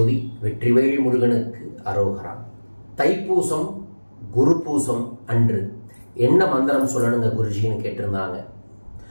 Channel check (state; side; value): inverted; both; correlation -1.00